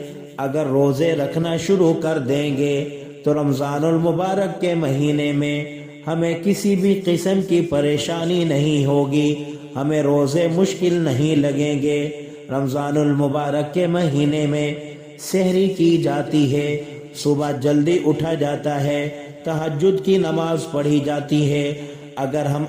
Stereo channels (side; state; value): both; identical; correlation 1.00